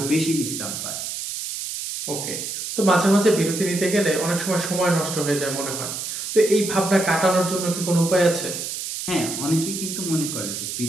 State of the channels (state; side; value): noise; right; hiss, 5 dB below the sound